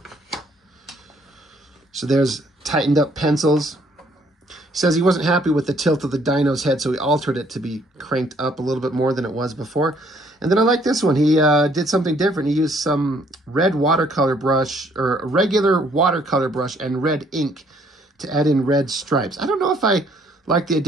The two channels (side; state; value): both; normal; correlation 0.64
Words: So there's tightened up pencils. He says he wasn't happy with the tilt of the dino's head, so he altered it to be cranked up a little bit more than it was before. And then I like this one. He did something different. He used some red watercolor brush, or a regular watercolor brush, and red ink to add in red stripes. I don't know if I like the